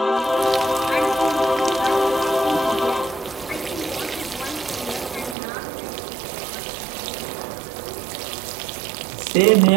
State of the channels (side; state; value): left; drops out; at 5.4 s